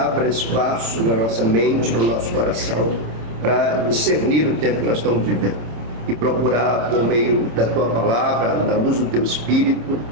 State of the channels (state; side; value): late; left; 26 ms